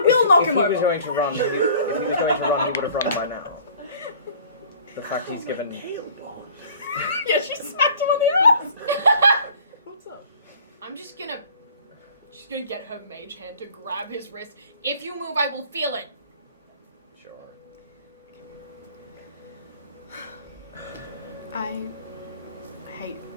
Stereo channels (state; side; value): inverted; both; correlation -0.50